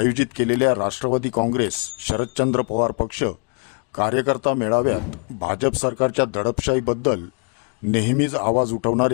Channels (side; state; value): right; quieter; 39.4 dB